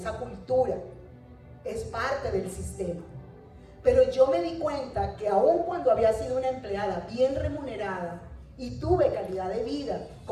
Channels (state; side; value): identical; both; correlation 1.00